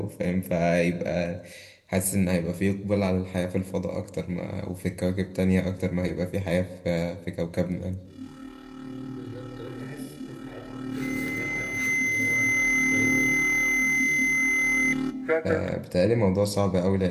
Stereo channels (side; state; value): both; identical; correlation 1.00